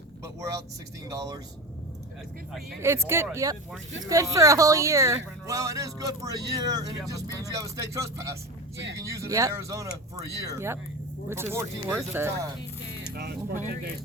but we're out $16. It's good, yep. It's good for a whole year. Well, it is good for a year, and it just means you have a state trust pass. So you can use it in Arizona for a year. Yep, which for is 14 worth days it. at a time. No, it's 14 days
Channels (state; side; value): normal; both; correlation 0.26